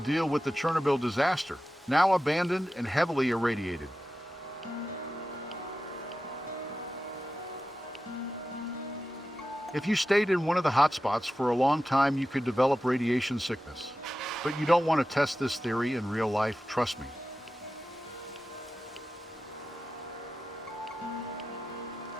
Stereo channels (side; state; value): both; normal; correlation 0.93